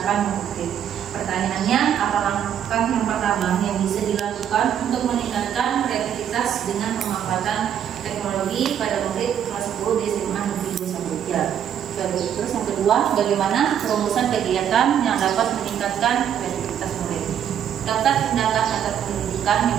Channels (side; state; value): left; quieter; 9.3 dB